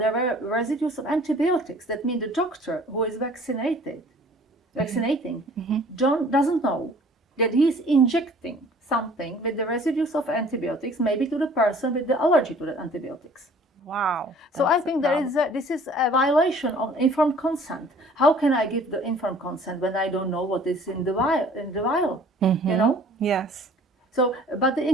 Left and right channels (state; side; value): normal; both; correlation 0.51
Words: were residues of antibiotics. That means the doctor who is vaccinating, doesn't know that he's injecting something with the residues of antibiotics, maybe to the person with the allergy to the antibiotics. Wow. So I think this is a violation of informed consent. How can I give the informed consent when I don't know what is in the vial? You know? Yes. So, but the